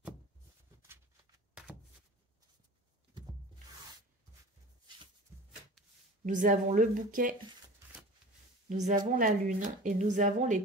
Nous avons le bouquet, nous avons la lune et nous avons les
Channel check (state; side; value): normal; both; correlation 0.38